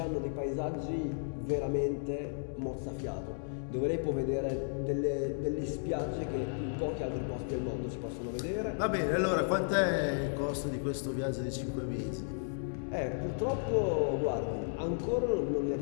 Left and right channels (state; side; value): silent; right; digital silence